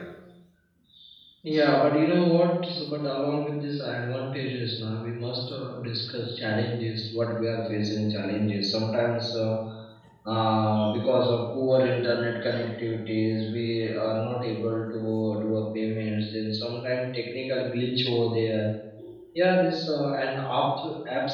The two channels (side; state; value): both; identical; correlation 1.00